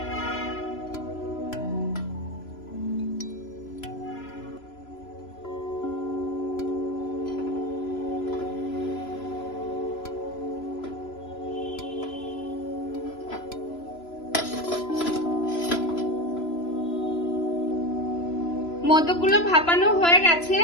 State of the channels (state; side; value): late; right; 3.0 ms